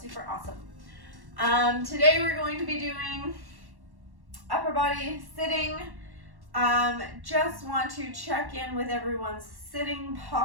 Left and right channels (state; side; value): late; left; 1.1 ms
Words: awesome. Today we're going to be doing upper body sitting. Just want to check in with everyone's sitting